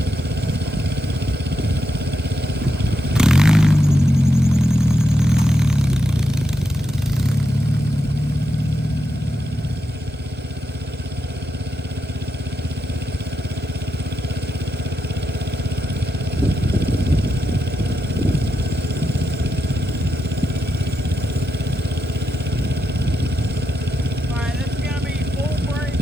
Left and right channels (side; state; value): both; normal; correlation 0.85